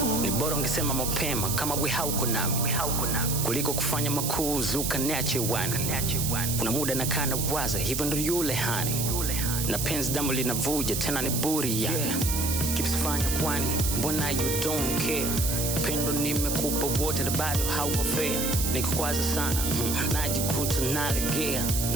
Ni bora ungesema mapema kama we hauko nami, kuliko kufanya makuzi ukaniache wani. Kuna muda nakaa nawaza, hivyo ndo yule hani, na penzi damu linavuja tena ni buri yani. Kipsifanya kwani mbona you don't care? Pendo nimekupa wote na bado hauko fair. Nikukwaza sana najikuta nalegea,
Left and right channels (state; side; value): noise; right; hiss, 1 dB below the sound